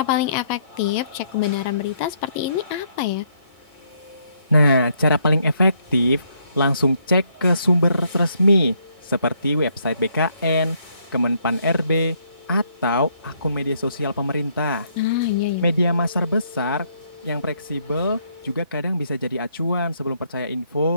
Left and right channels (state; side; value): inverted; both; correlation -0.71